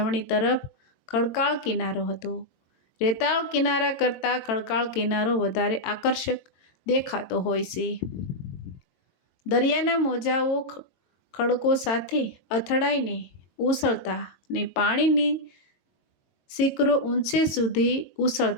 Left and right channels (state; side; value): late; right; 22 ms